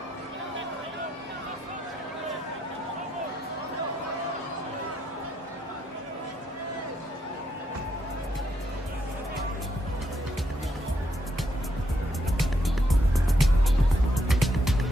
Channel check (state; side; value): normal; both; correlation 0.77